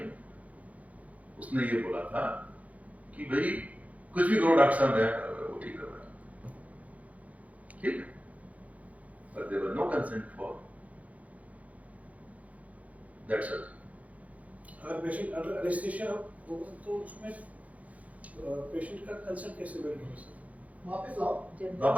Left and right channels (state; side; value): late; left; 0.070 ms